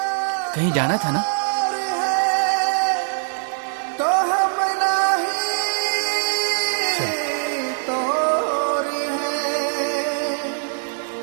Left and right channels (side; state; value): left; silent; 64 dB below the other